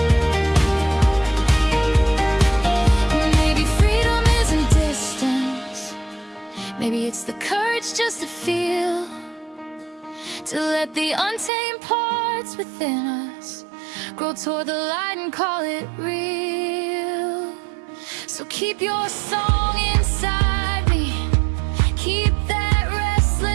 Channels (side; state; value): left; drops out; at 11.5 s